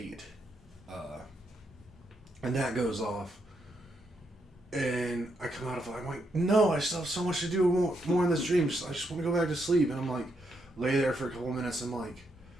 And that goes off. And I come out of it, I'm like, no, I still have so much to do more in this dream. I just want to go back to sleep. And I'm like, lay there for a couple minutes. I'm like,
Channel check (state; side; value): normal; both; correlation 0.79